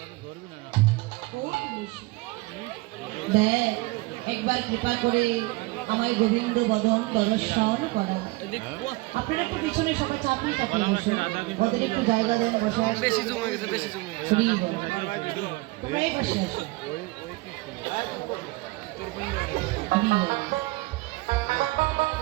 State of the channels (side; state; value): left; quieter; 22.1 dB